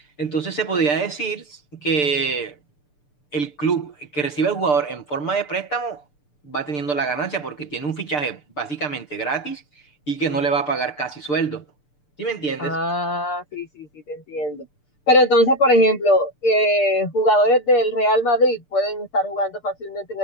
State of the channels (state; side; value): late; right; 6.8 ms